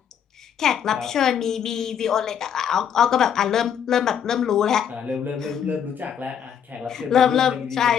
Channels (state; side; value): quieter; right; 8.4 dB